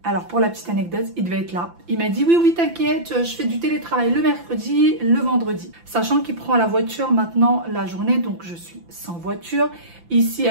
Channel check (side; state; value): left; late; 5.9 ms